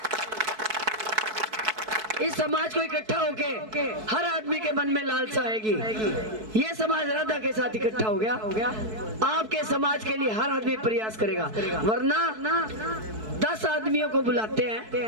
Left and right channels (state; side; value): late; left; 4.6 ms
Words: इस समाज को इकट्ठा होके हर आदमी के मन में लालसा आएगी। ये समाज राधा के साथ इकट्ठा हो गया, आपके समाज के लिए हर आदमी प्रयास करेगा। वरना 10 आदमियों को बुलाते हैं,